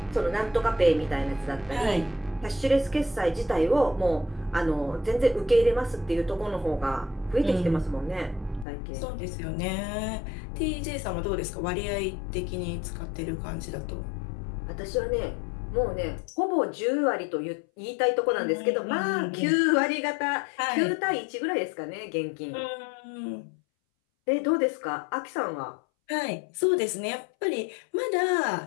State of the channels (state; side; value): drops out; right; at 8.7 s